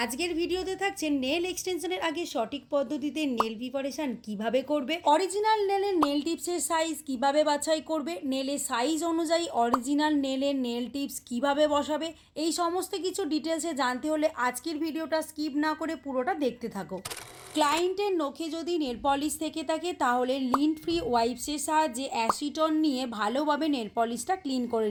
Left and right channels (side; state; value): both; identical; correlation 1.00